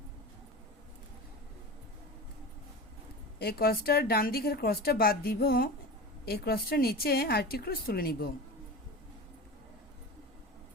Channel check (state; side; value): normal; both; correlation 0.30